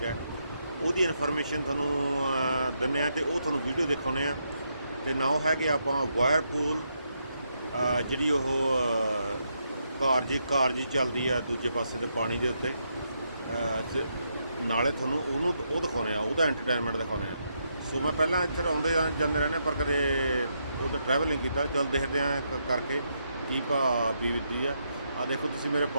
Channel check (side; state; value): both; inverted; correlation -0.80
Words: ਹੈ, ਉਹਦੀ ਇਨਫੋਰਮੇਸ਼ਨ ਤੁਹਾਨੂੰ ਦਿੰਦੇ ਹਾਂ ਅਤੇ ਉਹ ਤੁਹਾਨੂੰ ਵੀਡੀਓ ਦਿਖਾਉਂਦੇ ਹਾਂ। ਅਤੇ ਨਾਲ ਹੈਗੇ ਆਪਾਂ ਵਾਇਰਪੂਲ, ਜਿਹੜੀ ਉਹ ਕਾਰ ਜੀ ਚੱਲਦੀ ਆ ਦੂਜੇ ਪਾਸੇ ਦੇ ਪਾਣੀ ਦੇ ਉੱਤੇ। ਨਾਲੇ ਤੁਹਾਨੂੰ ਉਹ ਦਿਖਾਉਂਦੇ ਆ, ਉਹਦਾ ਐਂਟਰਟੇਨਮੈਂਟ ਦਿਖਾਉਂਦੇ ਆ। ਸੋ ਮੈਂ ਪਹਿਲਾਂ ਇੱਥੇ ਆਉਂਦੇ ਜਾਂਦੇ ਰਹਿੰਦੇ ਪਰ ਕਦੇ ਉਹਦਾ ਟਰੈਵਲ ਨਹੀਂ ਕੀਤਾ। ਚੱਲ ਦੇਖਦੇ ਹਾਂ ਕਰਕੇ ਕੀ ਭਾਅ ਬੀਤਦੀ ਆ। ਆਹ ਦੇਖੋ ਤੁਸੀਂ ਮੇਰੇ